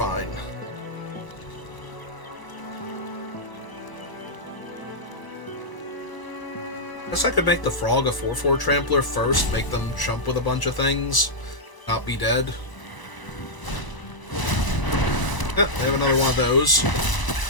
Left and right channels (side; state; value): right; late; 1.0 ms